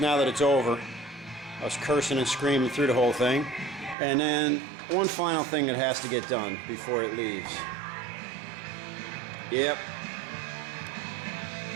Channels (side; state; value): left; drops out; at 4.0 s